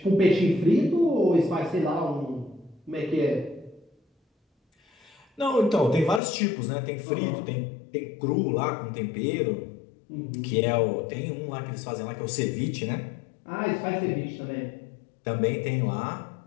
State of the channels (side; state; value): right; drops out; at 6.2 s